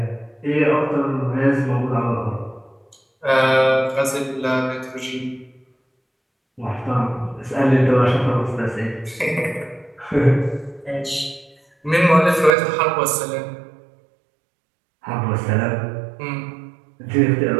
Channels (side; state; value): left; drops out; at 12.5 s